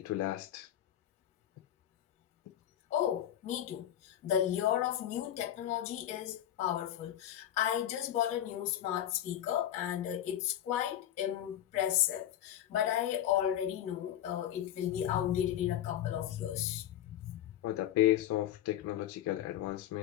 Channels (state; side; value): quieter; right; 11.5 dB